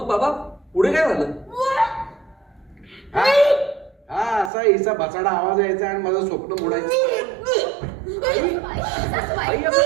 बाबा पुढे काय झालं? हा असा हिचा बसाडा आवाज यायचा आणि माझं स्वप्न मोडायचं. काय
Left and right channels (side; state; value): left; drops out; at 4.5 s